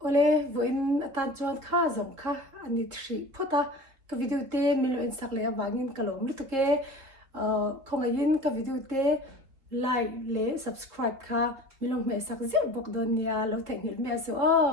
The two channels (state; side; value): late; left; 3.7 ms